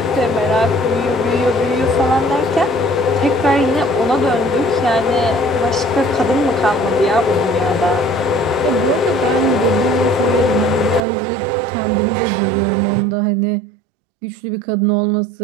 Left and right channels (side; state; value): left; drops out; at 11.0 s